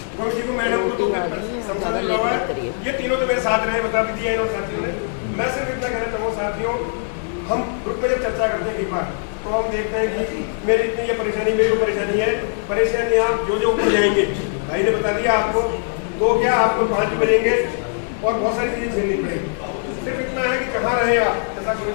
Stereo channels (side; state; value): right; silent; 65 dB below the other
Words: गोविंद जी को, मैडम को तो संसाधन मिला हुआ है। ये तीनों तो मेरे साथ रहे, बता भी दिया इन साथियों ने। मैं सिर्फ इतना कहना चाहूँगा साथियों, हम ग्रुप में जब चर्चा करते हैं कई बार, तो हम देखते हैं कि मेरी इतनी ये परेशानी, मेरी को परेशानी है, परेशानी आप जो ऊपर जाएंगे, भाई ने बता दिया आपको, तो क्या आपको 5 भी बनेंगे और बहुत सारी चीजें झेलनी पड़ेगी। सिर्फ इतना है कि कहाँ रहे आप, जैसा